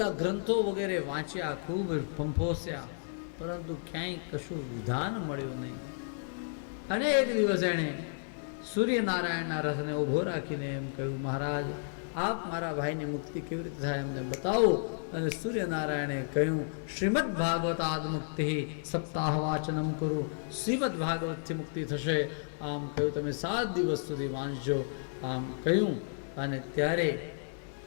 ગ્રંથો વગેરે વાંચ્યા, ખૂબ ફંફોસ્યા, પરંતુ ક્યાંય કશું વિધાન મળ્યું નહીં. અને એક દિવસ એણે સૂર્યનારાયણના રથને ઊભો રાખીને એમ કહ્યું, મહારાજ આપ મારા ભાઈની મુક્તિ કેવી રીતે થાય એમને બતાવો. અને સૂર્યનારાયણે કહ્યું, શ્રીમદ ભાગવતાદ મુક્તિ સપ્તાહ વાચનમ કરું. શ્રીમદ ભાગવતથી મુક્તિ થશે. આમ કહ્યું, તમે 7 દિવસ સુધી વાંચજો. આમ કહ્યું. અને ત્યારે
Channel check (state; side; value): silent; right; digital silence